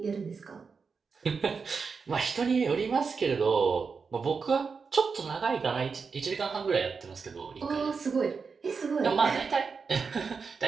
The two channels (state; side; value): quieter; left; 5.2 dB